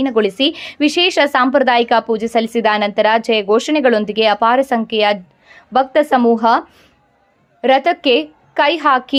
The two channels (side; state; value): both; identical; correlation 1.00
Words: ವಿಶೇಷ ಸಾಂಪ್ರದಾಯಿಕ ಪೂಜೆ ಸಲ್ಲಿಸಿದ ನಂತರ ಜಯ ಘೋಷಣೆಗಳೊಂದಿಗೆ ಅಪಾರ ಸಂಖ್ಯೆಯ ಭಕ್ತ ಸಮೂಹ ರಥಕ್ಕೆ ಕೈ